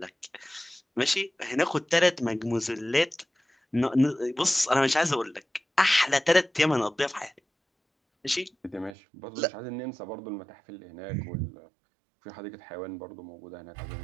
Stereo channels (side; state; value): left; drops out; at 9.0 s